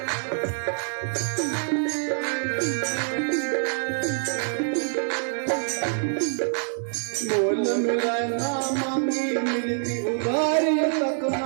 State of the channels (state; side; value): silent; left; digital silence